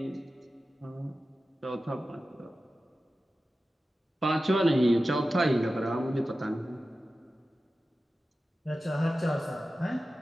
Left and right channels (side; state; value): both; normal; correlation 0.94